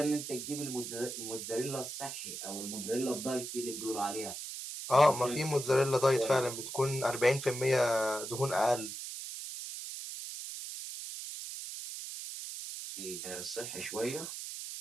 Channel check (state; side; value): noise; right; hiss, 7 dB below the sound